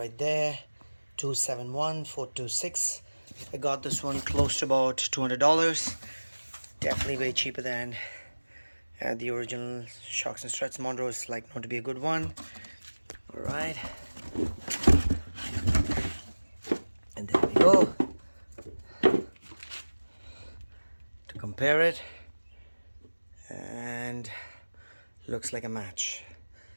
there, 271426. I got this one close to about $200. Definitely way cheaper than the original shocks and struts. Monroe is like known to be a good one. All right. go to compare it, and looks like a match.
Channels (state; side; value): inverted; both; correlation -1.00